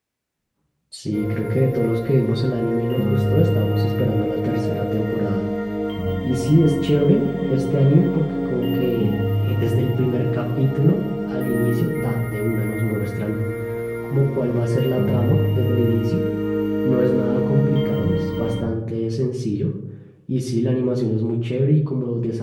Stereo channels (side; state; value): both; identical; correlation 1.00